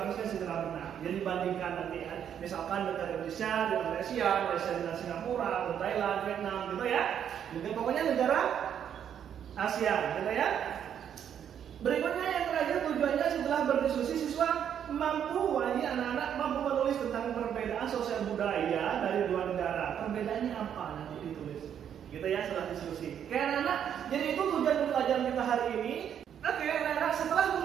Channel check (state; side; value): quieter; left; 9.0 dB